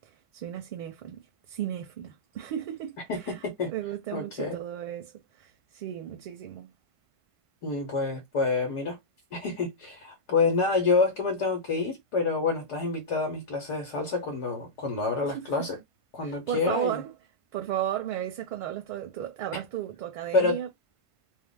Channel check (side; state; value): right; late; 1.5 ms